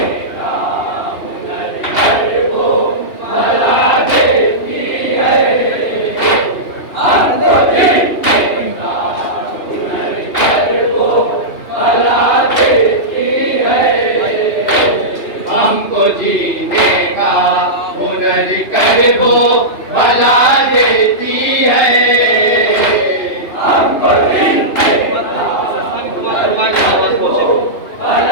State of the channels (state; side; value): late; right; 2.9 ms